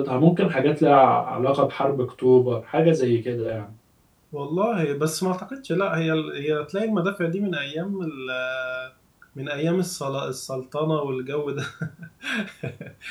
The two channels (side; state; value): both; identical; correlation 1.00